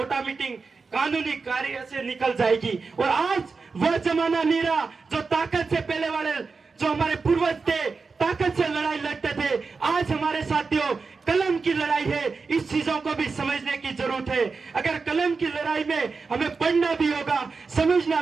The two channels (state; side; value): quieter; left; 4.6 dB